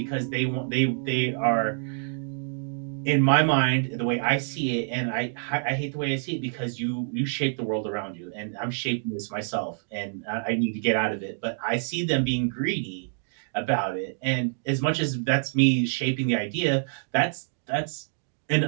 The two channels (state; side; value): silent; left; digital silence